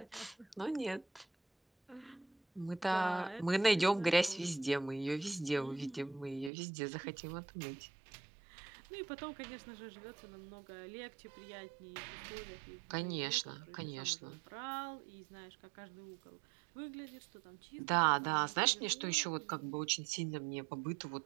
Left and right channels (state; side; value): drops out; left; at 6.5 s